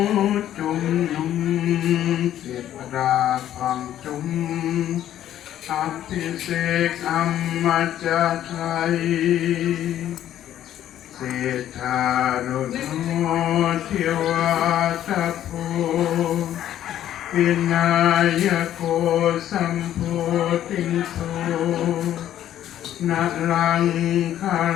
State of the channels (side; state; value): right; quieter; 11.7 dB